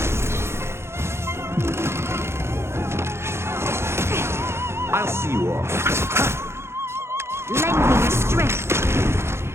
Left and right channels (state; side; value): late; left; 0.12 ms